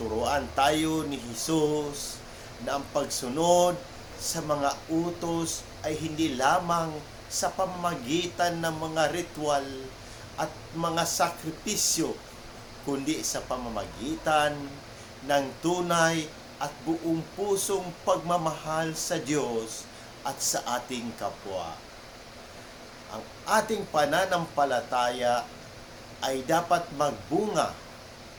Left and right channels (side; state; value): both; identical; correlation 1.00